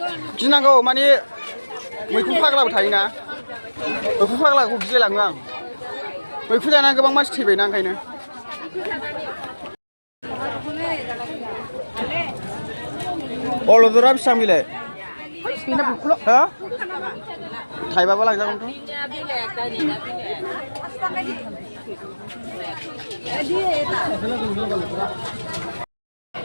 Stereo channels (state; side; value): inverted; both; correlation -1.00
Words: गिनांगौ माने मैखुन फाग्लाबो थायोना मैखुन फाग्लाखौ गिलायलाङो आं मैखुन जानानै गोबां मानसि थैबायना ओंखायनो अलदरा बेसेबां बेलाय हा थाइबाबो लांजागोनथ'